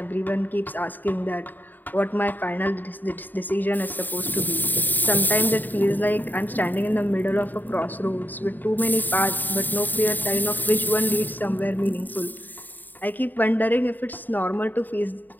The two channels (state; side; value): late; right; 0.088 ms